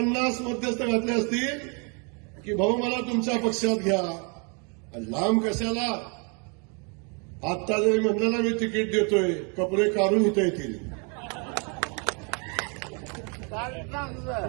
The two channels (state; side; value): quieter; left; 35.8 dB